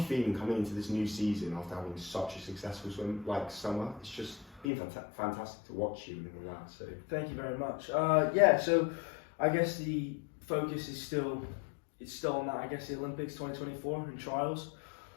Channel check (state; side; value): drops out; right; at 4.7 s